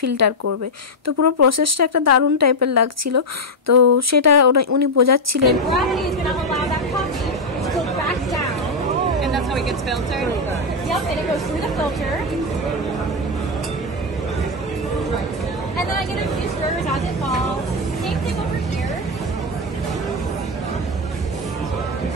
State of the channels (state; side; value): normal; both; correlation 0.04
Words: করবে। তো পুরো প্রসেসটা একটা দারুণ টাইপের লাগছিল। তো সেটা উনি বোঝাচ্ছিলেন। And that's how it gets filtered? Yep, and it goes through the filter. And then I get a few stirrers as it falls. Same thing over here.